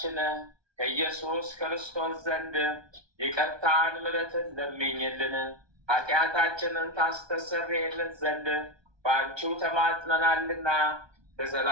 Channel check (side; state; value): left; late; 1.2 ms